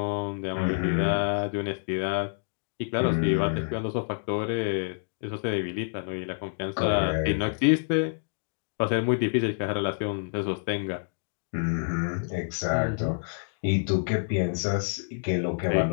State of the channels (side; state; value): right; silent; digital silence